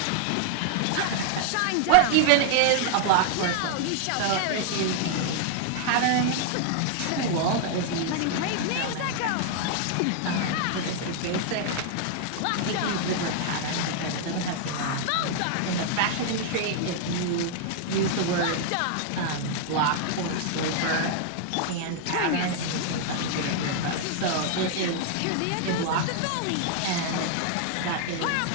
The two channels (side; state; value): both; different; correlation 0.00